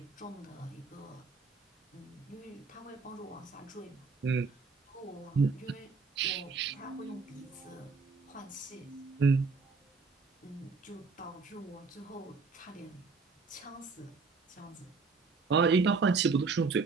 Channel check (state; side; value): quieter; left; 4.5 dB